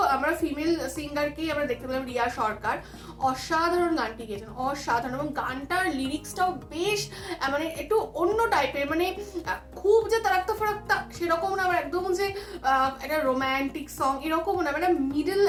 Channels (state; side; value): identical; both; correlation 1.00